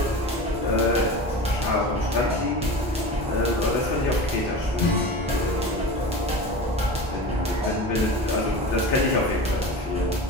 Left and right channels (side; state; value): both; normal; correlation 0.31